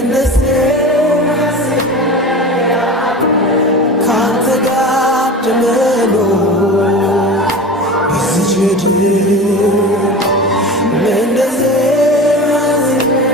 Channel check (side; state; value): both; normal; correlation 0.32